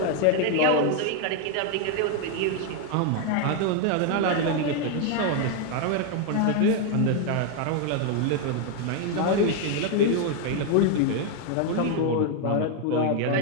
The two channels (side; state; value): both; different; correlation 0.01